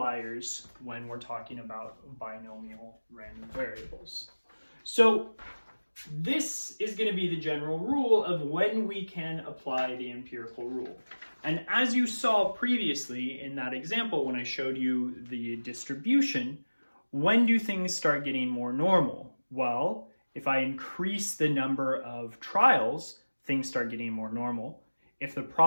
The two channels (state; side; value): inverted; both; correlation -1.00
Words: when we're talking about binomial random variables. So this is going to be the general rule of when we can apply the empirical rule. And as you saw previously in that example when I showed you the distribution, when do things start getting more normal? Well, if I increase the number of trials, things start getting more normal. If the